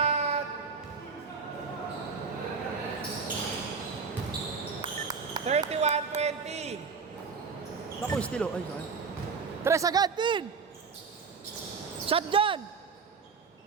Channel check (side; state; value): left; quieter; 5.3 dB